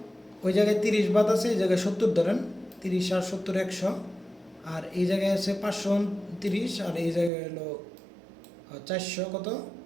ওই জায়গায় 30 বাদ আছে, এই জায়গায় 70 ধরেন, 30 আর 70 100, আর এই জায়গায় আছে 529 আর এই জায়গায় হলো 400 কত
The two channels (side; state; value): left; drops out; at 7.3 s